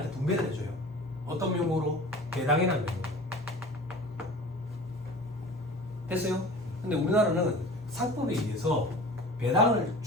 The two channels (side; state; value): both; normal; correlation 0.40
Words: 분배를 해줘요. 어떤 명목으로? 배당이라는 명목으로. 됐어요? 근데 우리나라는 상법에 의해서 배당을